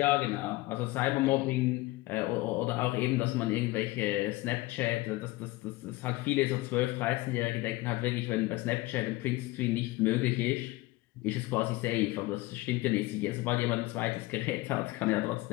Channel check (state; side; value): quieter; right; 19.9 dB